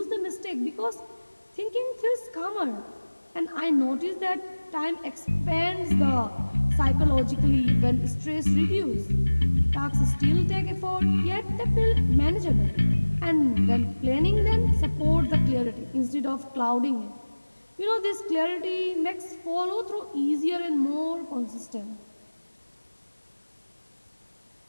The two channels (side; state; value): both; inverted; correlation -1.00